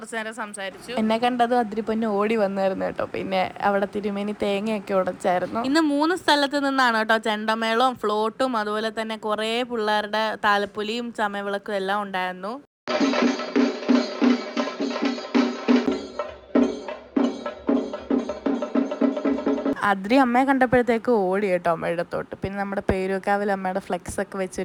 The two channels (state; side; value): identical; both; correlation 1.00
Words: നേരം സംസാരിച്ചു. എന്നെ കണ്ടതും അതിരിപ്പൊന്നെ ഓടി വന്നായിരുന്നു കേട്ടോ. പിന്നെ അവിടെ തിരുമേനി തേങ്ങയൊക്കെ ഉടച്ചായിരുന്നു. ഇന്ന് 3 സ്ഥലത്ത് നിന്നാണ് കേട്ടോ ചെണ്ടമേളവും ഫ്ലോട്ടും അതുപോലെ തന്നെ കുറേ പിള്ളേരുടെ താലപ്പൊലിയും ചമയവിളക്കും എല്ലാം ഉണ്ടായിരുന്നു. അതിരി അമ്മയെ കണ്ടപ്പോഴത്തേക്ക് ഓടി കേട്ടോ അമ്മയുടെ അടുത്തോട്ട്. പിന്നെ നമ്മുടെ പേരൂക്കാവിൽ അമ്മയുടെ ഫ്ലെക്സ് ഒക്കെ